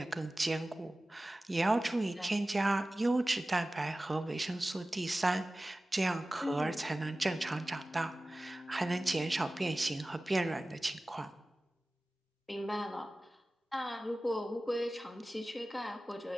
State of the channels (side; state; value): both; normal; correlation 0.97